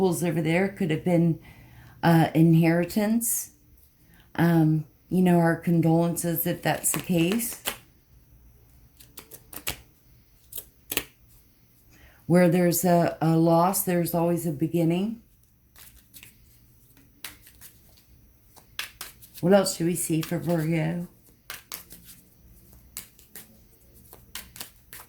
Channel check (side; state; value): both; identical; correlation 1.00